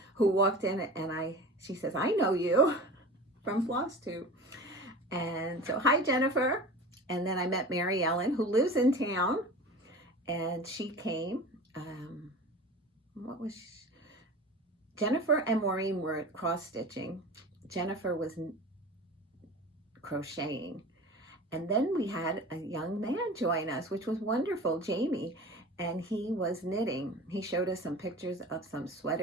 who walked in, and she says, I know you from Flosstube. And so, hi, Jennifer. And then I met Mary Ellen, who lives in town, and she came. Jennifer and Maureen were cross-stitching. Jennifer was crocheting. And then we had a young man join us, which was wonderful, Jamie, and he was knitting. He showed us some pictures of some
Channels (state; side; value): normal; both; correlation 0.36